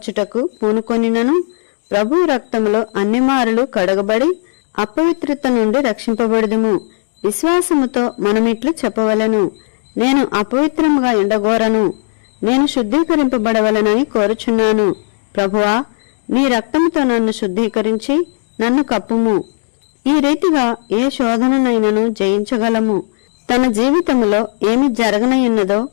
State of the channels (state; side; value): silent; right; digital silence